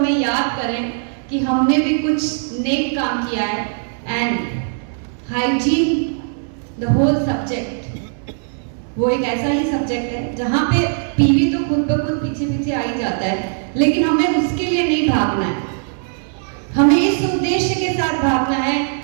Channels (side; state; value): left; silent; digital silence